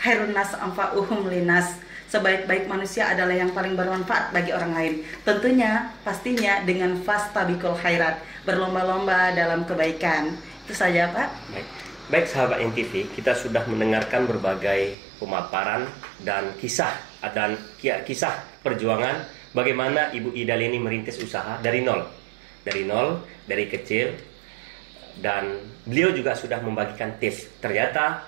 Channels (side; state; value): left; drops out; at 15.0 s